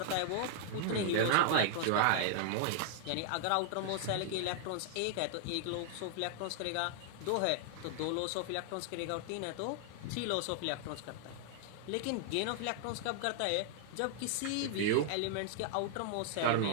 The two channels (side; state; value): both; different; correlation 0.00